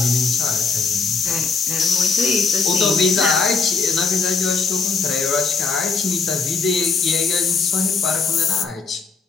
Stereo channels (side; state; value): right; quieter; 4.8 dB